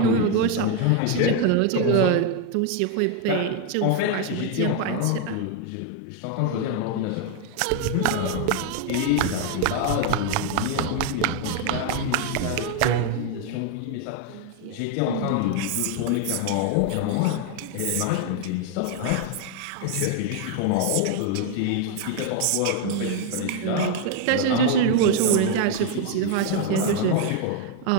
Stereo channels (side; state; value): both; different; correlation 0.01